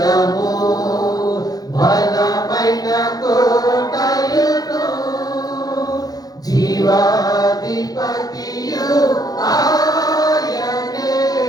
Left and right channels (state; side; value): late; right; 0.18 ms